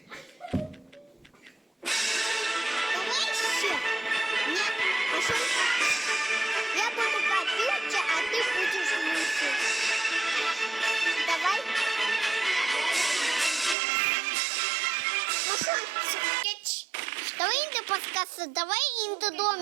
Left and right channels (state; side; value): drops out; left; at 13.8 s